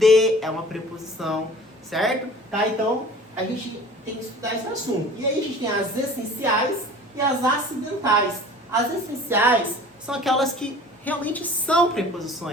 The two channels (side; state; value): both; normal; correlation 0.45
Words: é uma preposição, certo? Tá? Então a gente tem que estudar esse assunto. E aí a gente tem as essenciais e as acidentais. As essenciais são aquelas que realmente são